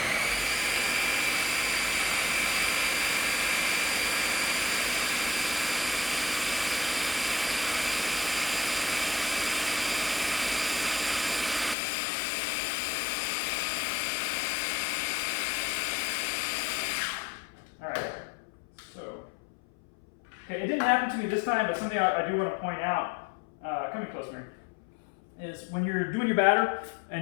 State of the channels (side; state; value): right; drops out; at 11.8 s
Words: happened to me this time, but something I do want to point out, coming close, Mary, is when you're doing your batter,